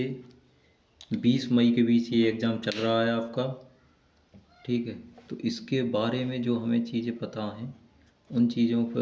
20 मई के बीच। ये एग्ज़ाम चल रहा है आपका, ठीक है। तो इसके बारे में जो हमें चीज़ें पता हैं उन चीज़ों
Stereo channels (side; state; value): both; identical; correlation 1.00